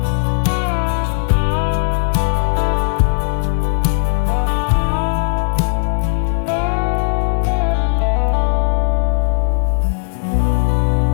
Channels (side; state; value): right; silent; digital silence